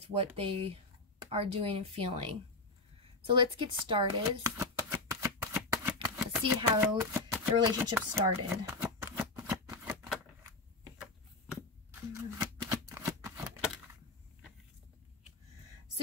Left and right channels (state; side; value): quieter; right; 3.1 dB